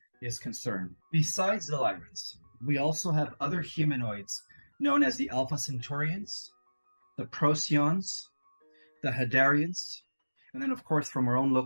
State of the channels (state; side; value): inverted; both; correlation -1.00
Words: is concerned. Besides the Lyrans, we also have other humanoids known as the Alpha Centaurians, the Procyons, the Hadarians, and then, of course, from our own